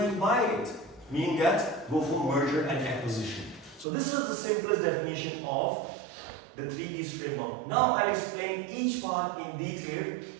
buy it. Meaning that, go for merger and acquisition. So this is the simplest definition of the 3Ds framework. Now I'll explain each part in detail.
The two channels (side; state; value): left; drops out; at 3.9 s